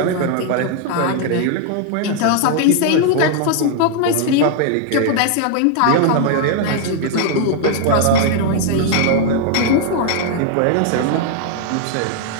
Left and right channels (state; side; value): different; both; correlation 0.00